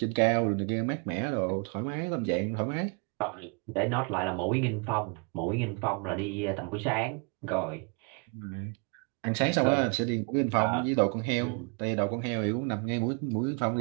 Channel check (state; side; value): quieter; left; 35.2 dB